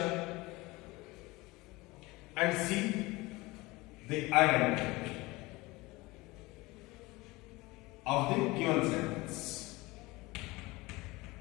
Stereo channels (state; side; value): quieter; right; 21.8 dB